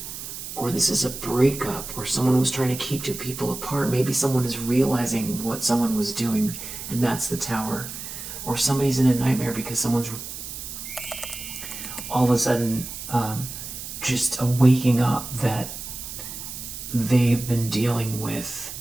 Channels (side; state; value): right; noise; hiss, 9 dB below the sound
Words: Or this is a breakup, or someone was trying to keep two people apart. Maybe someone is realizing what someone was doing, and that's the Tower. Or somebody's in a nightmare because someone's all of a sudden just waking up that they've been dealing with